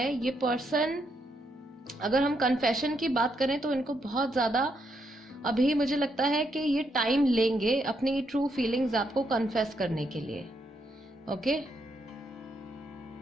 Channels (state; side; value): normal; both; correlation 0.78